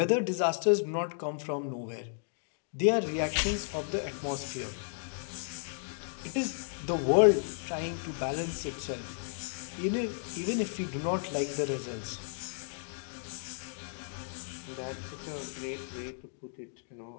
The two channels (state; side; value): silent; right; digital silence